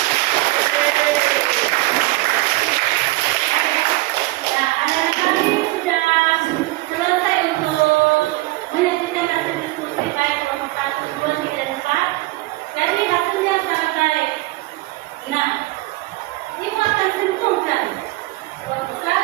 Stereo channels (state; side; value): quieter; left; 19.8 dB